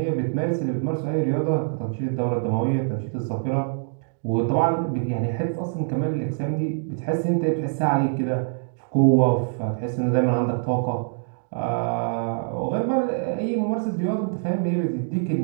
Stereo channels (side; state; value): left; silent; digital silence